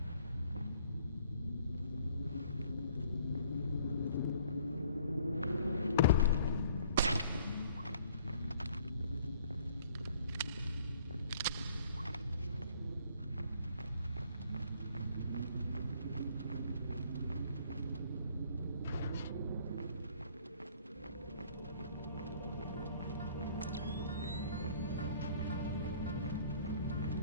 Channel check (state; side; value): inverted; both; correlation -0.58